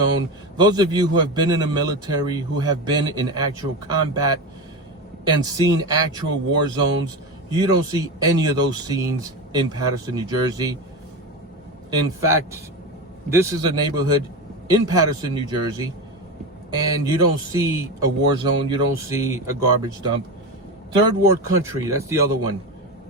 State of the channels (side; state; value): both; normal; correlation 0.20